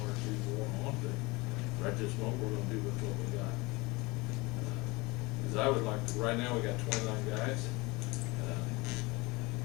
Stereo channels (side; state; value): right; quieter; 24.3 dB